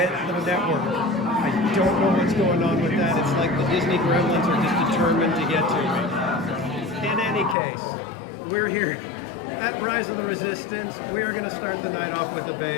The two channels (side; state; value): right; drops out; at 7.6 s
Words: the network. I don't know what's going on with that. It's like the Disney gremlins are just determined to get to me. In any case, we're here at Rise of the Resistance. We are going to start the night off with a